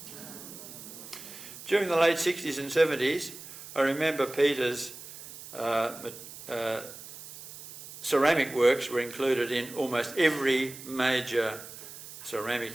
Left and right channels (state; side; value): noise; right; hiss, 14 dB below the sound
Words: During the late 60s and 70s, I remember Peter's ceramic works were included in almost every major